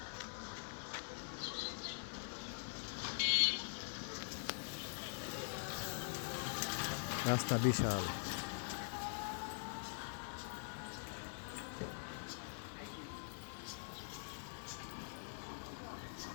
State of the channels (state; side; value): silent; right; digital silence